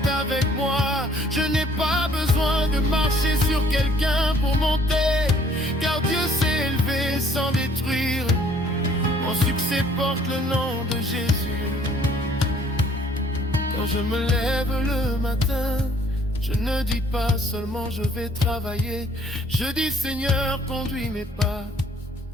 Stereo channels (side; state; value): both; normal; correlation 0.60